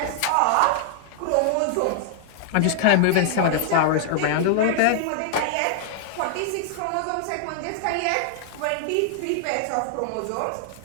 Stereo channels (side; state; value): both; different; correlation -0.01